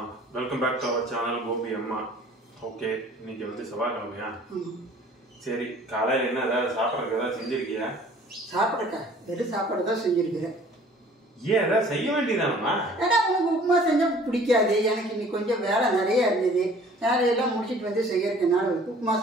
welcome back to our channel Gopi Amma. Okay, இன்னைக்கு வந்து செவ்வாய்க்கிழமையா? சரி, காலையில் என்ன ஏதாவது சாப்பிட்றதுக்கு ஏதாவது செஞ்சிருக்கியா? சாப்பிட்றக்கா வெறும் சாப்பாடு தான் செஞ்சிருக்கிறேன். ஏன் ஏதாவது செய்ய வேண்டியதானம்மா? ஏன்னா உனக்கு உப்புமா செஞ்சால் பிடிக்காது. எனக்கு இன்னைக்கு கொஞ்சம் வேலை நிறைய இருந்தது. வேலையெல்லாம் முடிச்சுட்டு வந்து செய்யறதுனால உப்புமா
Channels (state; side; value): normal; both; correlation 0.51